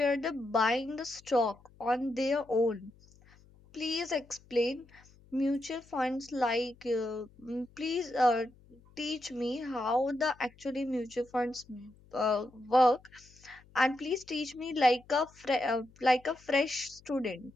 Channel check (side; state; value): left; noise; hum, 27 dB below the sound